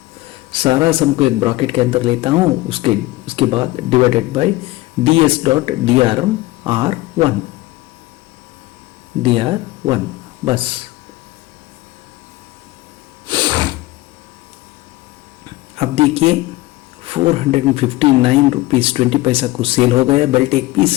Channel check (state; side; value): quieter; right; 18.9 dB